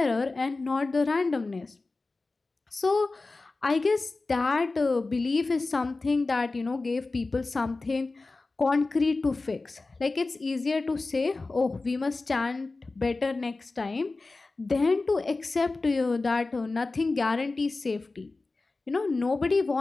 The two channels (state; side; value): quieter; right; 3.5 dB